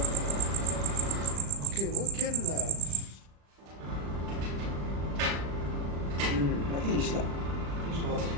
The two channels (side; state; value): left; late; 35 ms